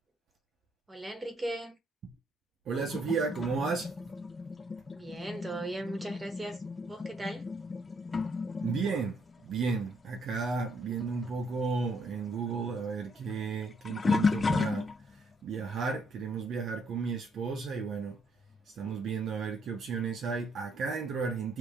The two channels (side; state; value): both; normal; correlation 0.71